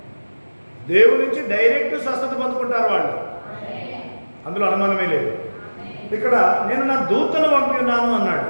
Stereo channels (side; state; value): both; inverted; correlation -1.00